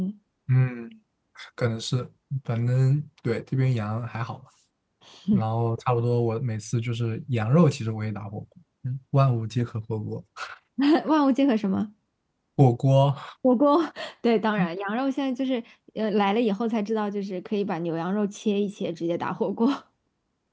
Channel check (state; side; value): identical; both; correlation 1.00